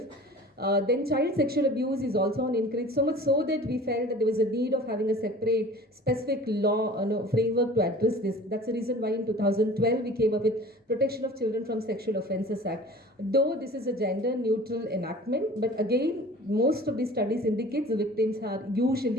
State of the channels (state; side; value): normal; both; correlation 0.43